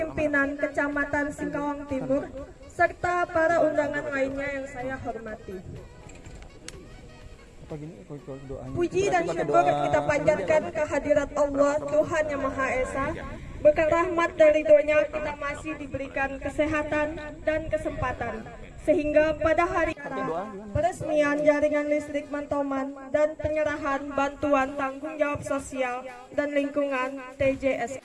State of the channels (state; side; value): identical; both; correlation 1.00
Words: Kecamatan Singkawang Timur, serta para undangan lainnya yang saya hormati. Puji dan syukur kita panjatkan kehadirat Allah Tuhan Yang Maha Esa. Berkat rahmat dan ridhonya kita masih diberikan kesehatan dan kesempatan, sehingga pada hari peresmian jaringan listrik Mantoman dan penyerahan bantuan tanggung jawab sosial dan lingkungan TJS